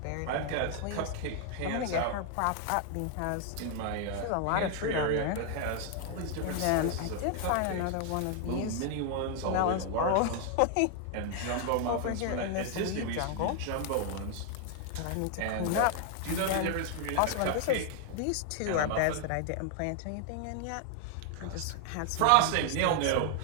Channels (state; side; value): different; both; correlation 0.00